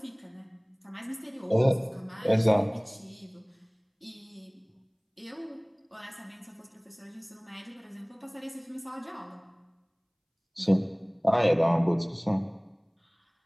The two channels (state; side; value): identical; both; correlation 1.00